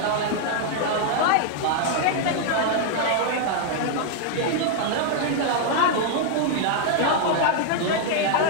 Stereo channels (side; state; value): both; different; correlation 0.00